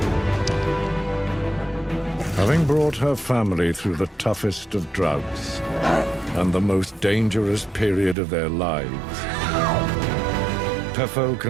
Having brought her family through the toughest of droughts and the most dangerous period of their lives, Phefo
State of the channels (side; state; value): left; drops out; at 8.2 s